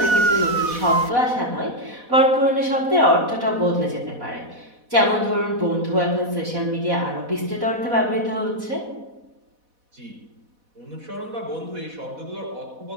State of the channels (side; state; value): left; late; 4.1 ms